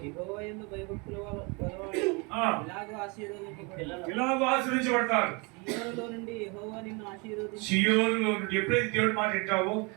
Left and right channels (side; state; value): left; quieter; 30.1 dB